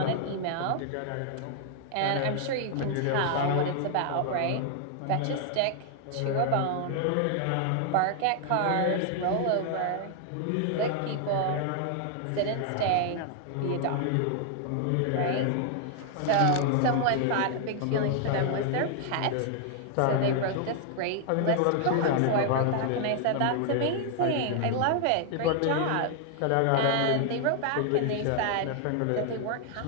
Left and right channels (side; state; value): both; different; correlation 0.00